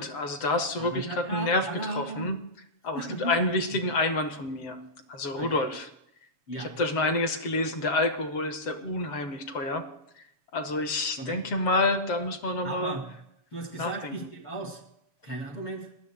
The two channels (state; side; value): late; right; 7.1 ms